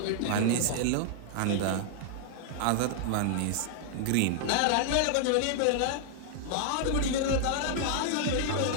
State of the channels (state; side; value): different; both; correlation -0.01